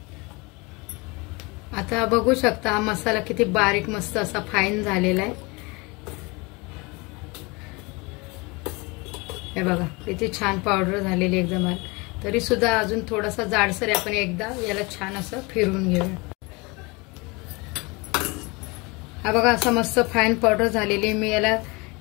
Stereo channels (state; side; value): quieter; right; 26.7 dB